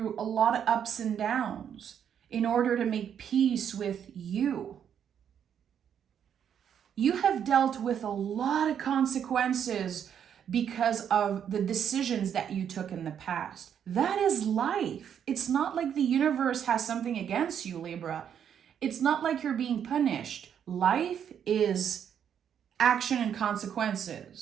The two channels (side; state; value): left; quieter; 8.6 dB